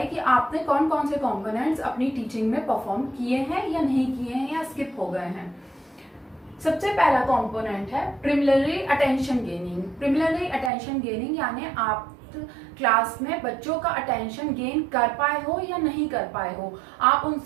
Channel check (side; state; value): left; drops out; at 10.7 s